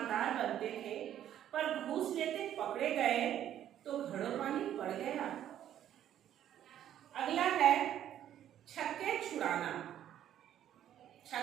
बनते थे, पर घूस लेते पकड़े गए तो घड़ों पानी पड़ गया। अगला है छक्के छुड़ाना।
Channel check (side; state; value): left; quieter; 11.0 dB